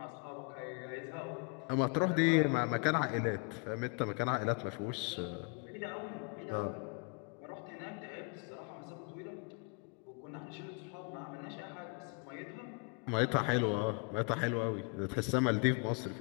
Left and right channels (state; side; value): quieter; right; 34.3 dB